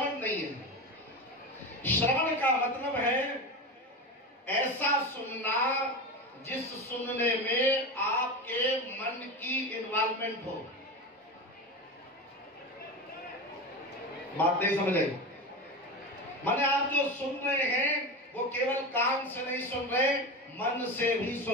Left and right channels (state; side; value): normal; both; correlation 0.24